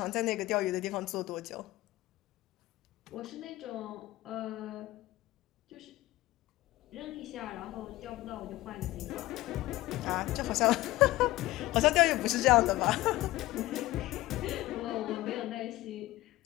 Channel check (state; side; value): quieter; right; 17.7 dB